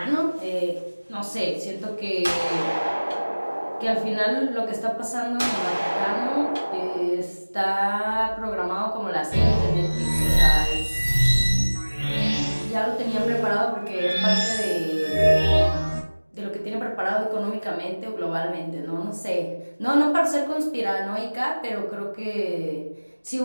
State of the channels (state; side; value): inverted; both; correlation -1.00